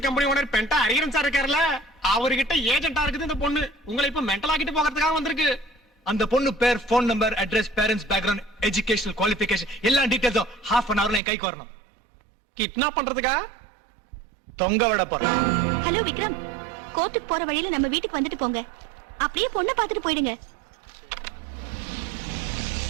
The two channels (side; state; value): left; drops out; at 11.2 s